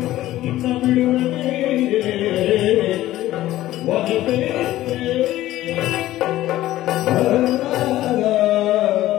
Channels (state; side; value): quieter; right; 15.1 dB